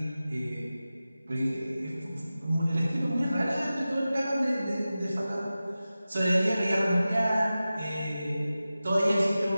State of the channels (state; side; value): inverted; both; correlation -0.95